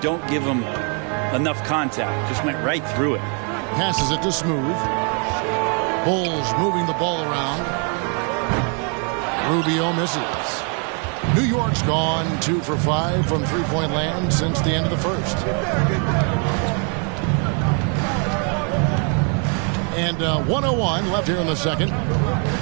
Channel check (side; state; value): left; quieter; 38.8 dB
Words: give him enough contact. Just went right through it. Passes it to Smooth. Bulls moving the ball around. Rubio misses. New York's gone 2 for 5 from three-point land since the end of the first. And 1:01 left here in the second.